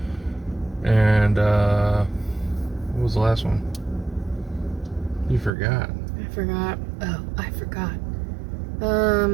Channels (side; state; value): left; drops out; at 5.5 s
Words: and what was the last one? You forgot. I forgot. Oh, I forgot.